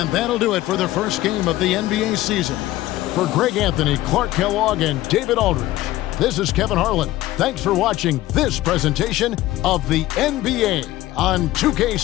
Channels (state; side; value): quieter; right; 16.1 dB